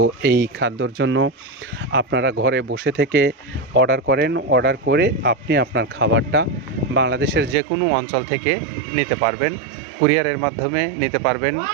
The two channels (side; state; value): left; drops out; at 7.6 s